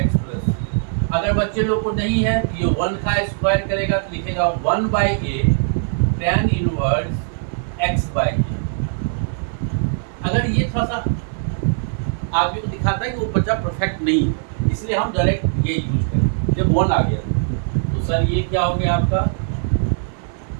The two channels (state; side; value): silent; left; 65 dB below the other